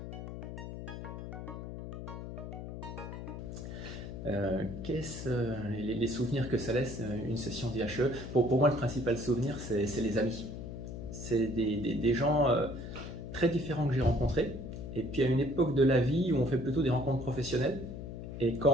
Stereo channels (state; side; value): noise; left; hum, 8 dB below the sound